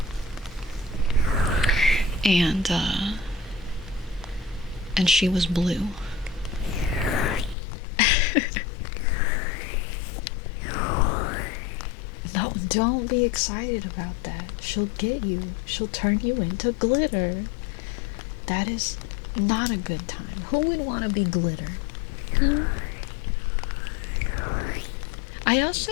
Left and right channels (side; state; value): right; drops out; at 7.6 s